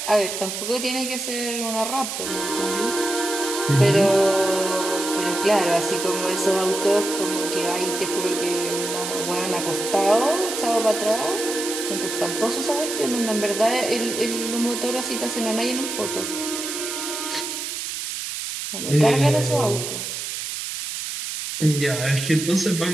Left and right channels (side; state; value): right; noise; hiss, 5 dB below the sound